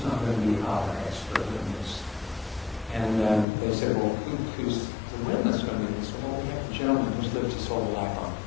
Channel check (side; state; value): right; drops out; at 3.5 s